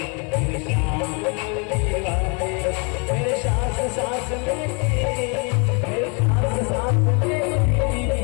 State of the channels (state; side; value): quieter; right; 34.2 dB